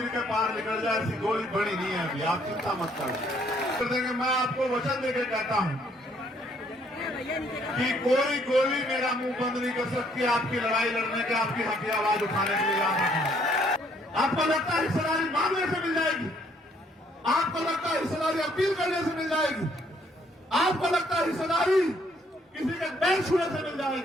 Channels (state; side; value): normal; both; correlation 0.66